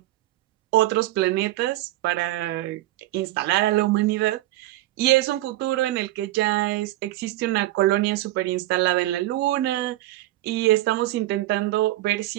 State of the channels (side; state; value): left; quieter; 16.3 dB